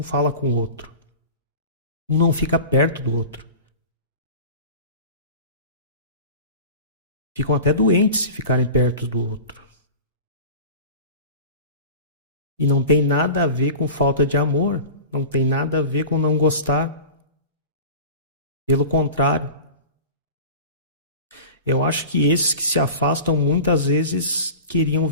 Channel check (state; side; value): inverted; both; correlation -0.35